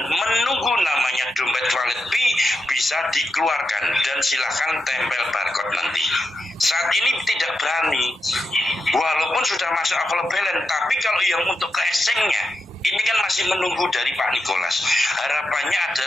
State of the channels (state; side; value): normal; both; correlation 0.86